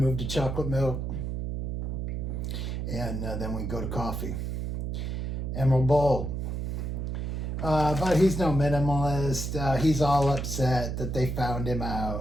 to chocolate milk. And then we go to coffee. Emerald Bowl. But he's no minimalist. He's all upset that they found him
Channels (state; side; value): noise; right; hum, 3 dB below the sound